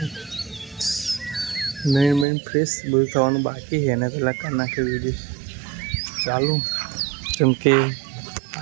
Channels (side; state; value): left; drops out; at 2.2 s